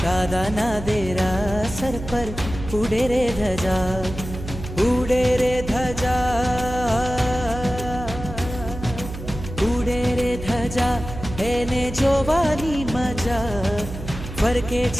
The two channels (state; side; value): noise; right; hum, 10 dB below the sound